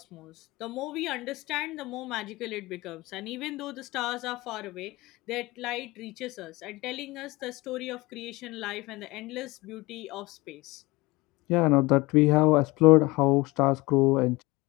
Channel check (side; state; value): right; quieter; 22.0 dB